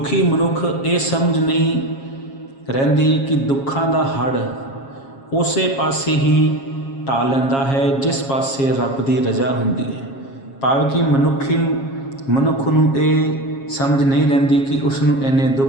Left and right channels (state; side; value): late; right; 7.4 ms